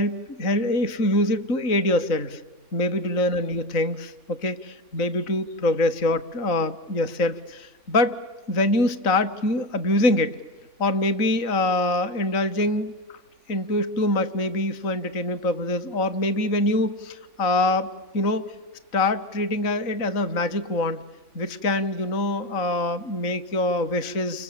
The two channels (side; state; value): right; late; 3.9 ms